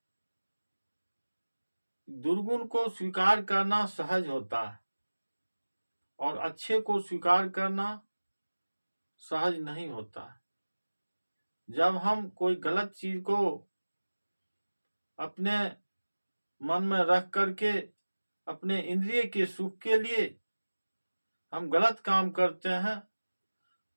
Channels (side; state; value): both; inverted; correlation -1.00